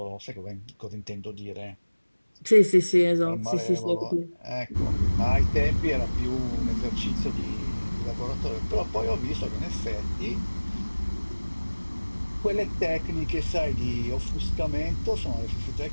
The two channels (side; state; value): both; inverted; correlation -1.00